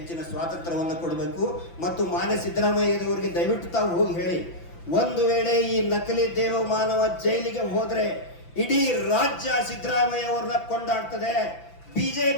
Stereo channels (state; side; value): late; right; 5.9 ms